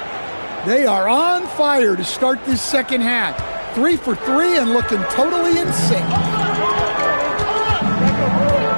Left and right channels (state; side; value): inverted; both; correlation -1.00